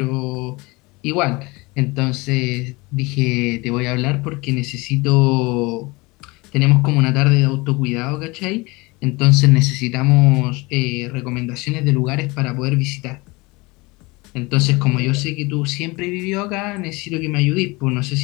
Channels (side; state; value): right; quieter; 24.4 dB